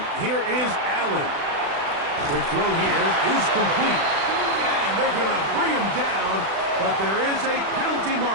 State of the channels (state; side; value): late; left; 36 ms